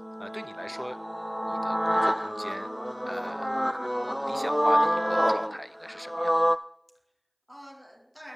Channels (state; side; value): identical; both; correlation 1.00